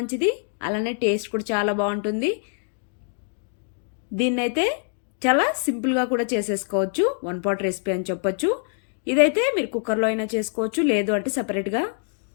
అలానే టేస్ట్ కూడా చాలా బాగుంటుంది. దీన్నైతే చాలా సింపుల్గా కూడా చేసేసుకోవచ్చు, వన్ పాట్ రెసిపీ అని చెప్పొచ్చు. ఇదైతే మీరు కుక్కర్లో అయినా చేసుకోవచ్చు, లేదు అంటే సపరేట్గా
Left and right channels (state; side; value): silent; right; 60 dB below the other